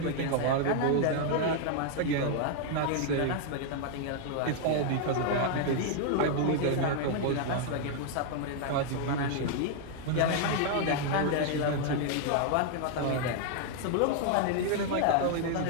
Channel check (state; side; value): different; both; correlation 0.00